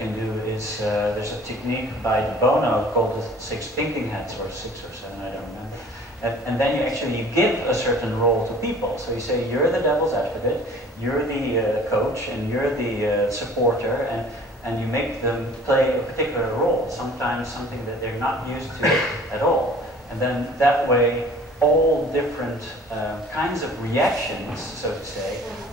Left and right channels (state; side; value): normal; both; correlation 0.49